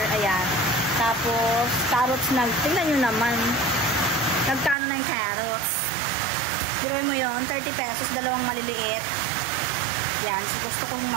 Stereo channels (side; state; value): left; drops out; at 4.8 s